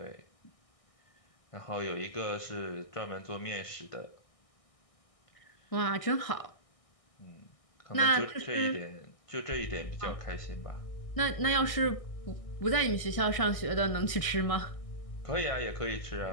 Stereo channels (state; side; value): late; right; 1.6 ms